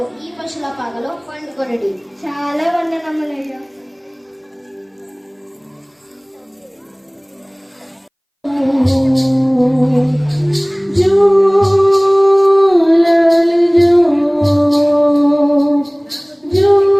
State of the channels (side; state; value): both; identical; correlation 1.00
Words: ఈ పశుల పాగలో పండుకొనడి. చాలా వందనములయ్యా.